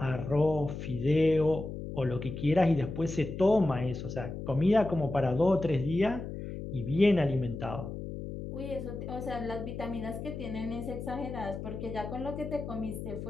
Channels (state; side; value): noise; left; hum, 8 dB below the sound